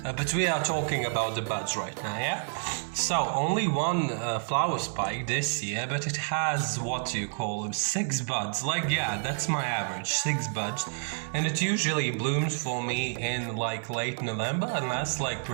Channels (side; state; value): left; silent; 57 dB below the other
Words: But we are talking about the buds right now, yeah? So, only one flower spike this year, but it has, what do you call them, 6 buds. Like, yeah, that's my average, 6 buds. And it usually blooms for me in like late November and lasts like